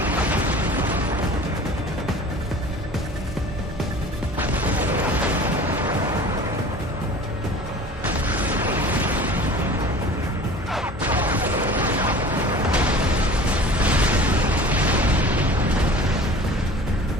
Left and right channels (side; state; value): both; normal; correlation 0.42